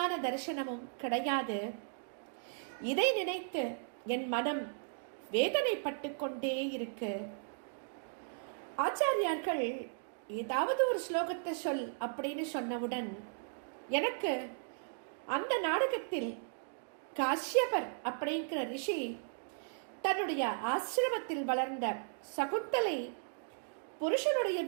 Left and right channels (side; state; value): left; silent; digital silence